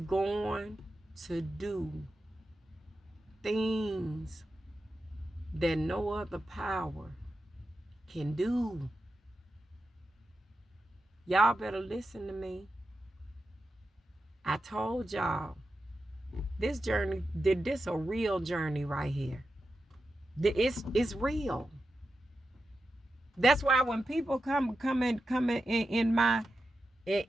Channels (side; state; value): both; normal; correlation 0.90